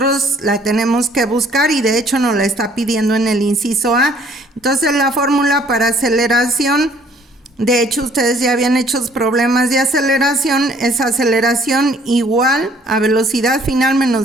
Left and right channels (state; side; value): normal; both; correlation 0.59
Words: la tenemos que buscar y de hecho nos la está pidiendo en el inciso A. Entonces la fórmula para aceleración, de hecho ustedes ya habían hecho problemas de aceleración, es aceleración igual a velocidad final